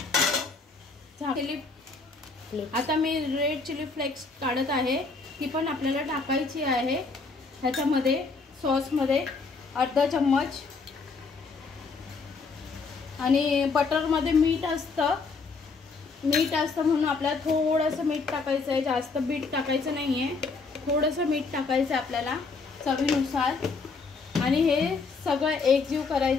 आता मी रेड चिली फ्लेक्स काढत आहे, ती पण आपल्याला टाकायची आहे ह्याच्यामध्ये सॉसमध्ये अर्धा चम्मच। आणि बटरमध्ये मीठ असतं म्हणून आपल्याला थोडंसं मीठ टाकायचं आहे, जास्त मीठ टाकायचं नाही आहे, थोडंसं मीठ टाकायचं आहे आपल्याला चवीनुसार। आणि हे सगळं एकजीव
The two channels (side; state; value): right; quieter; 4.3 dB